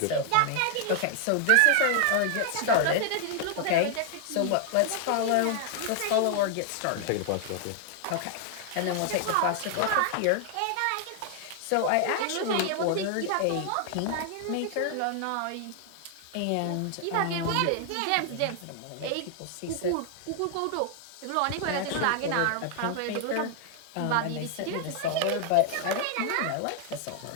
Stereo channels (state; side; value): different; both; correlation 0.00